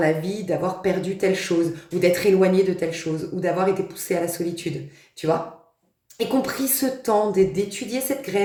vie, d'avoir perdu telle chose, ou d'être éloigné de telle chose, ou d'avoir été poussé à la solitude, tu vois. Et qu'on pris ce temps d'étudier cette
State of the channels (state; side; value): identical; both; correlation 1.00